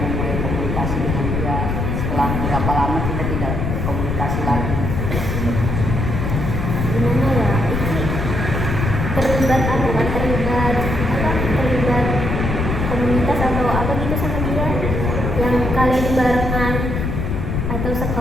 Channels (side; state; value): left; noise; rumble, 1 dB below the sound